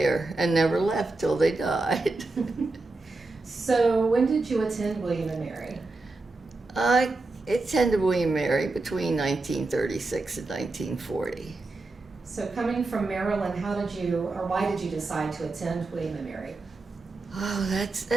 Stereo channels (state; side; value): quieter; left; 3.3 dB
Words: and never left till they died. So when did you attend William & Mary? I attended William & Mary between 1936 and 1940. So coming from Maryland, why did you decide to attend William & Mary? Oh,